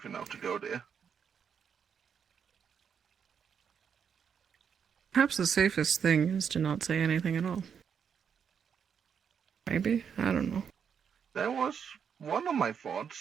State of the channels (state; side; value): quieter; left; 7.3 dB